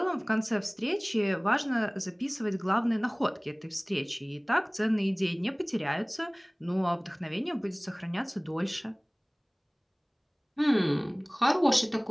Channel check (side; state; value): both; identical; correlation 1.00